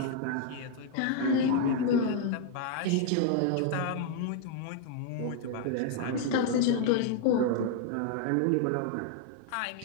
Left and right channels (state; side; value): different; both; correlation 0.00